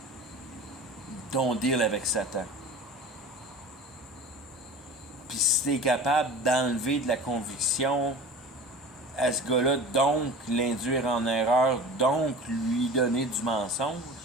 ton deal avec Satan. Puis si tu es capable d'enlever de la conviction à ce gars-là, donc l'induire en erreur, donc lui donner du mensonge,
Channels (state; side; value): normal; both; correlation 0.38